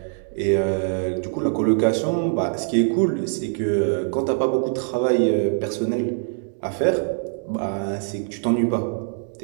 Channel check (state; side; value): silent; left; 63 dB below the other